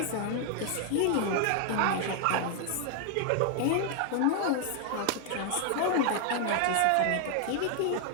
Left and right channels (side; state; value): both; different; correlation 0.00